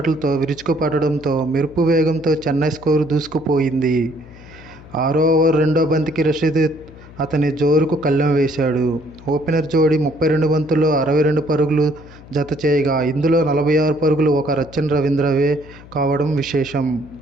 విరుచుకుపడడంతో మెరుపు వేగంతో చెన్నై స్కోరు దూసుకుపోయింది. 6వ ఓవర్ రెండో బంతికి రషీద్ అతని జోరుకు కళ్ళెం వేశాడు. ఓపెనర్ జోడీ 32 బంతుల్లో 62 పరుగులు జత చేయగా, ఇందులో 46 పరుగులు ఒక రచిన్ రవీంద్రవే కావడం విశేషం.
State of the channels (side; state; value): left; noise; hum, 20 dB below the sound